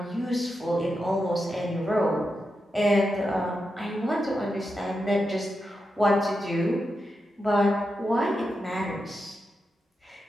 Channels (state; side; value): normal; both; correlation 0.88